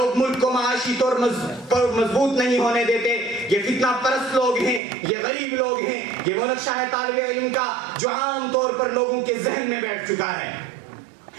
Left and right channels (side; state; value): left; drops out; at 4.8 s